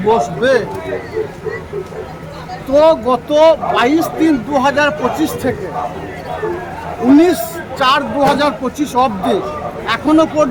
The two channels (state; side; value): identical; both; correlation 1.00